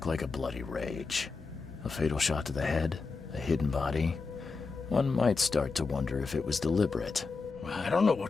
like a bloody rage. A fatal shot to the head, a hidden body. One might start to wonder if it was deliberate. I don't know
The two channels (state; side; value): quieter; right; 4.3 dB